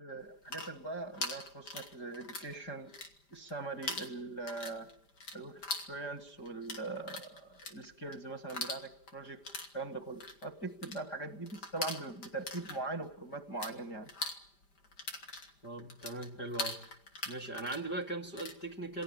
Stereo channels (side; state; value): right; late; 5.0 ms